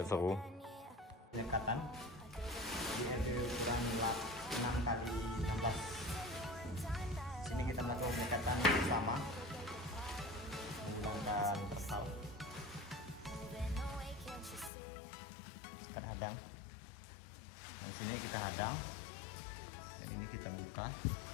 seru. Pendekatan di RW ukuran 6 kita melakukan pendekatan bersama menggunakan terpal. Kita hadang. Di sini kita hadang dan ini kita buka.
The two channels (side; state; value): right; drops out; at 14.7 s